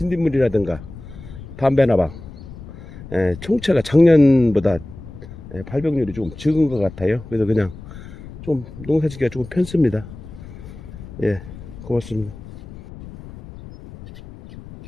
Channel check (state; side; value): noise; left; rumble, 15 dB below the sound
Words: 담배나방 총체가 작년보다 발병률이 조금 적은 것 같아요. 그래서 그냥 좀 농사짓기가 조금 편습니다. 예, 고맙습니다.